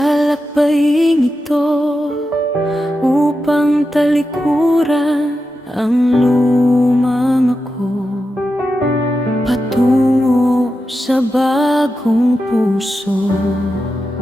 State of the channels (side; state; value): both; normal; correlation 0.89